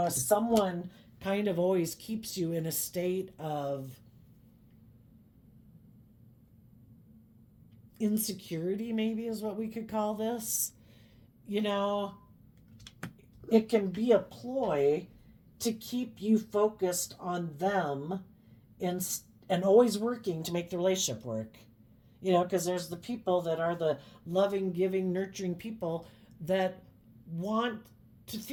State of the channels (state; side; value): identical; both; correlation 1.00